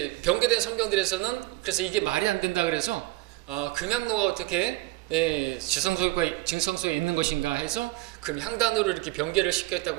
변개된 성경들에서는 그래서 이게 말이 안 된다 그래서 금향로가 어떻게 지성소에 있는 것인가 해서 금향단으로 이렇게 변개를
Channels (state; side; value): quieter; left; 20.2 dB